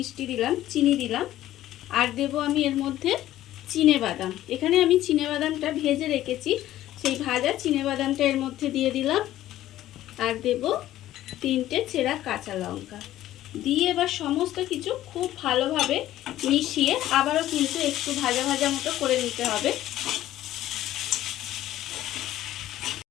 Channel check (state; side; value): quieter; right; 13.8 dB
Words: দিলাম, চিনি দিলাম। আর দেব আমি এর মধ্যে চিনেবাদাম। এখানে আমি চিনেবাদামটা ভেজে রেখেছি, সেই ভাজা চিনেবাদামটা এর মধ্যে দিয়ে দিলাম। আর দেব 3টে চেরা কাঁচা লঙ্কা। দিয়ে এবার সমস্ত কিছু খুব ভালোভাবে মিশিয়ে আবারও কিন্তু একটু ভাজা ভাজা মতো করে নিতে হবে।